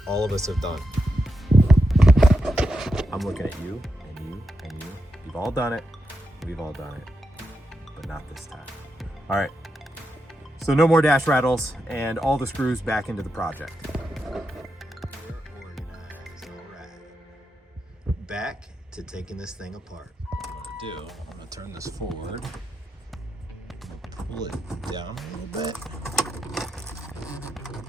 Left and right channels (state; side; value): normal; both; correlation 0.86